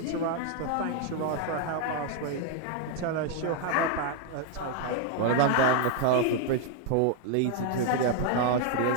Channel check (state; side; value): different; both; correlation 0.00